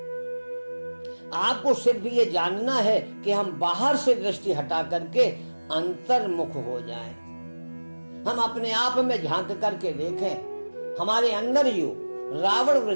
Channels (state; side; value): inverted; both; correlation -1.00